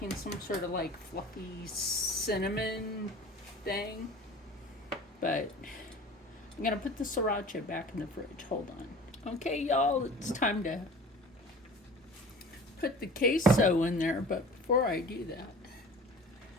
some sort of like fluffy cinnamon thing. But I'm going to put the sriracha back in the fridge. Hold on. Okay, y'all, it's time to put the queso in there. But before I do that,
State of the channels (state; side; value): normal; both; correlation 0.42